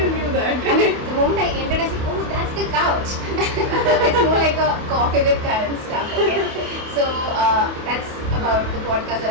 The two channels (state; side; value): late; left; 28 ms